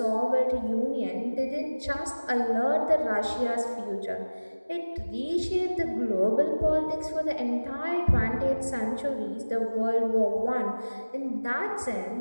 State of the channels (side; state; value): both; inverted; correlation -1.00